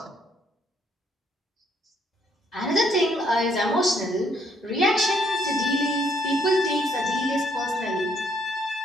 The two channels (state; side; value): normal; both; correlation 0.70